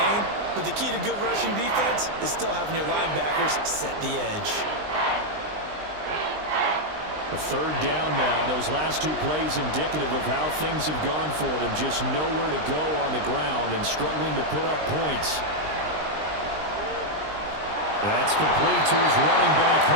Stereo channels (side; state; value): left; late; 20 ms